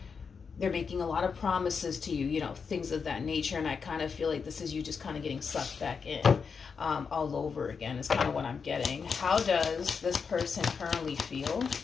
They're making a lot of promises to you, you know, things of that nature. And I kind of feel like this is you just kind of getting sucked back in all over again is kind of what I'm getting. How does this person currently feel?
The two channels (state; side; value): quieter; right; 5.7 dB